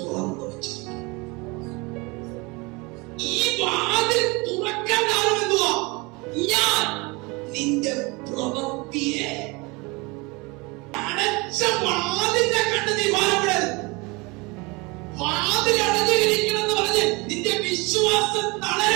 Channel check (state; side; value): quieter; left; 26.2 dB